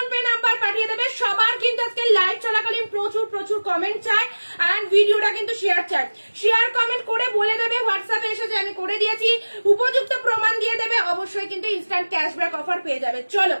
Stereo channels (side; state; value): both; inverted; correlation -1.00